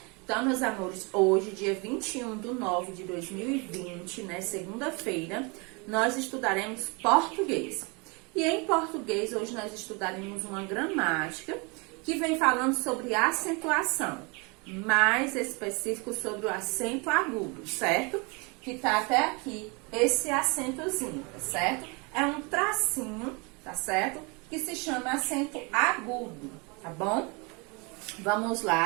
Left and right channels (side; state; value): left; quieter; 29.9 dB